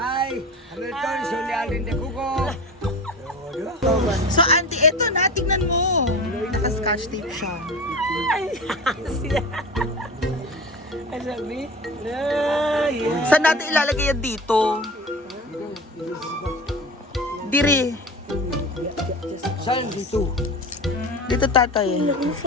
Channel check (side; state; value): both; normal; correlation 0.33